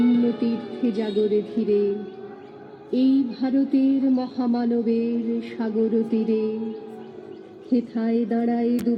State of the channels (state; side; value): identical; both; correlation 1.00